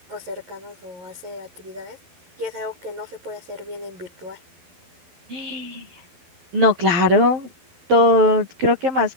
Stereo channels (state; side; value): late; left; 12 ms